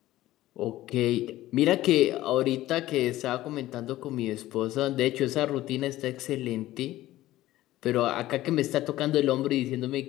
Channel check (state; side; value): quieter; right; 15.5 dB